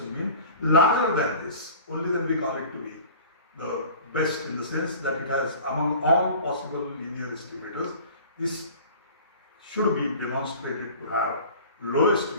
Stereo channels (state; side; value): inverted; both; correlation -0.42